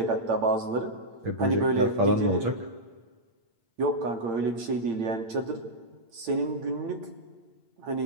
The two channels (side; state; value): left; late; 8.8 ms